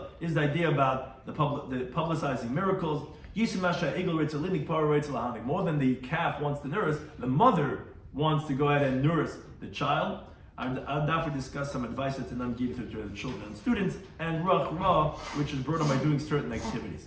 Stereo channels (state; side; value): identical; both; correlation 1.00